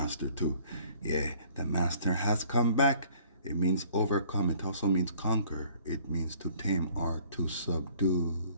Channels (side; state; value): both; inverted; correlation -0.56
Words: too. Yeah, the master has come back. It means overcome. It also means conquer. It means to tame or to subdue.